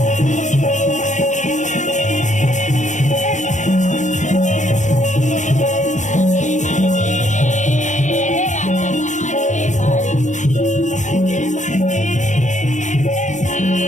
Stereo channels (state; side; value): late; right; 0.35 ms